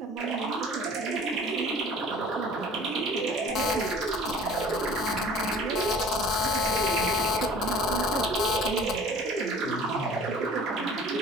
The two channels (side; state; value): both; normal; correlation 0.46